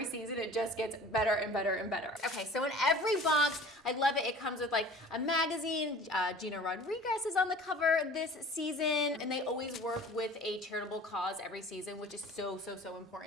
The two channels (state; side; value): normal; both; correlation 0.44